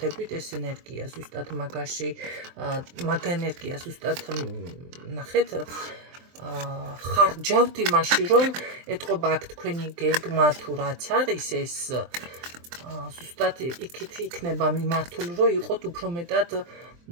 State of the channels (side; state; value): left; late; 23 ms